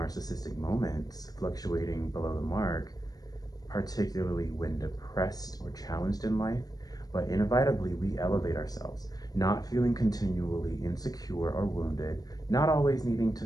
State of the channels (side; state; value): right; late; 0.18 ms